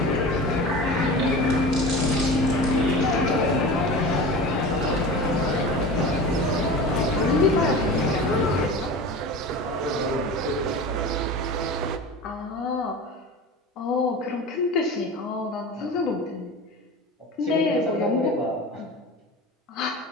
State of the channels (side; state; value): both; normal; correlation 0.32